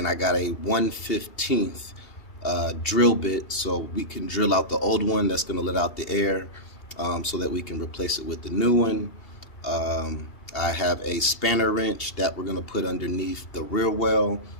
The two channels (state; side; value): late; right; 2.8 ms